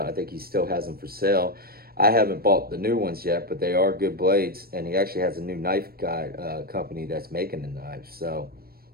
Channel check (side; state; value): left; late; 0.44 ms